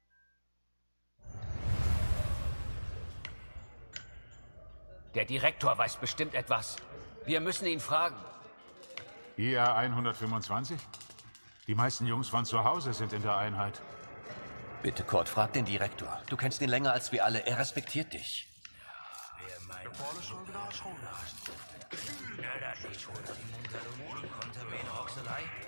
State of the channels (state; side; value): inverted; both; correlation -1.00